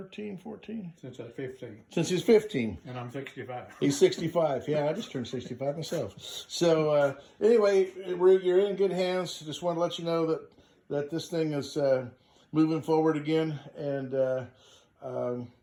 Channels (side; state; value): both; identical; correlation 1.00